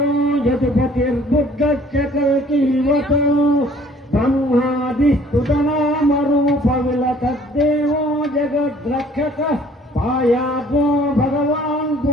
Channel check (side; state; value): both; normal; correlation 0.55